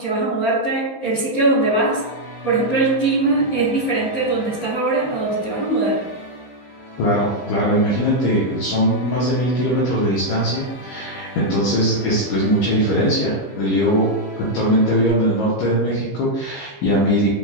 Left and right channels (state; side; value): late; right; 15 ms